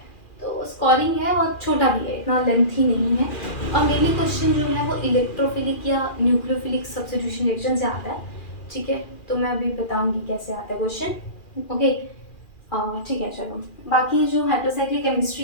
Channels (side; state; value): right; late; 2.4 ms